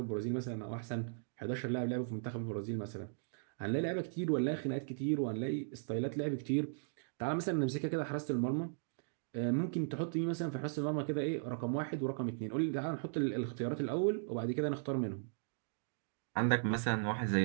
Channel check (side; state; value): left; silent; digital silence